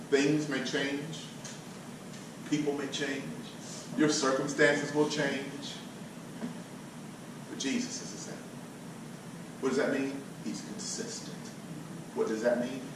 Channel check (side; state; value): both; identical; correlation 1.00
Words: Things may change. People may change. Your circumstances will change. But Jesus is the same. What does that mean? He's consistent. What does that mean?